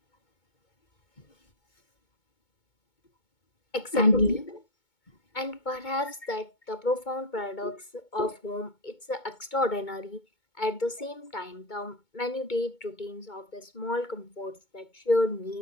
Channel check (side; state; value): right; late; 2.2 ms